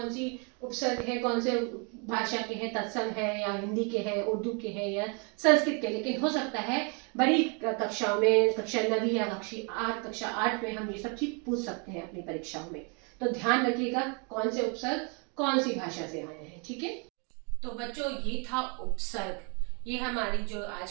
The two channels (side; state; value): left; quieter; 34.7 dB